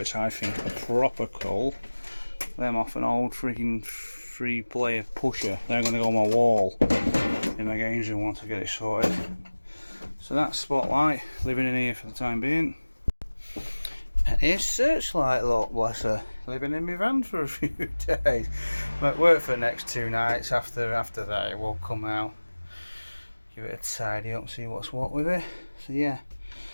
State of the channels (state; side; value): inverted; both; correlation -1.00